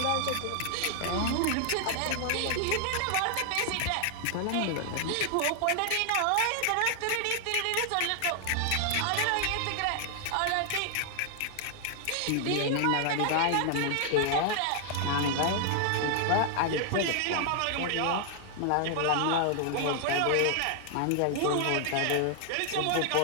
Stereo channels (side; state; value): both; different; correlation 0.00